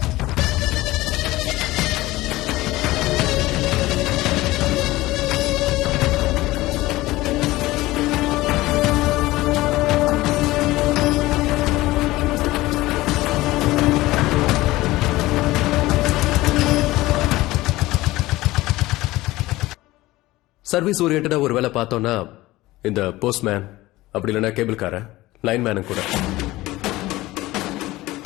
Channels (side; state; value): right; quieter; 18.3 dB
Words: சர்வீஸ் ஓரியன்டா ஒரு வேலை பார்த்தோம்னா இந்த போஸ்ட்மேன், அப்படி இல்லைன்னா கேபிள் கார, லைன்மேனும் கூட.